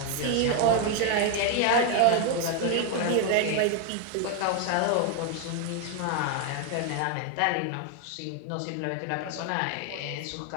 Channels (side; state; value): both; different; correlation 0.01